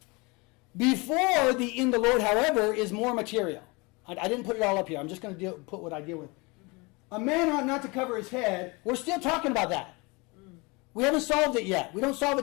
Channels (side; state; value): right; quieter; 26.8 dB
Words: Before the in the Lord, however, is more material. I didn't put it all up here. I'm just going to put what I deal with. A man ought not to cover his head. We're still talking about that. We haven't solved it yet. We don't solve